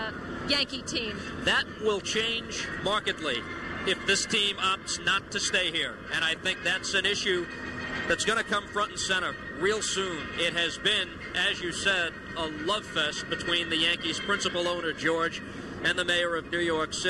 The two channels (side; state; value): both; identical; correlation 1.00